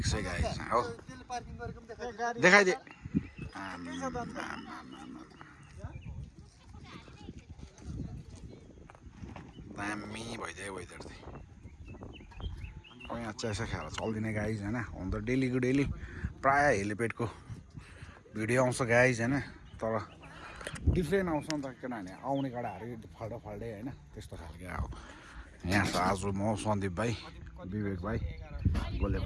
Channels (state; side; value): identical; both; correlation 1.00